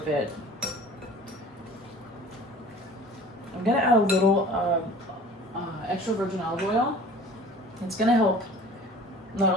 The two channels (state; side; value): normal; both; correlation 0.45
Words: I'm going to add a little extra virgin olive oil. It's going to help not